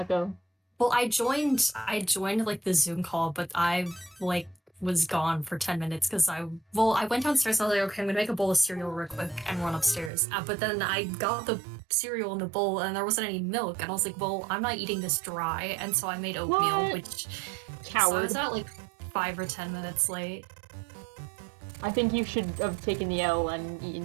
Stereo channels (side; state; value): left; drops out; at 10.1 s